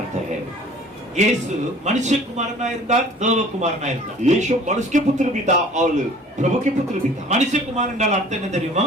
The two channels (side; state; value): both; normal; correlation 0.49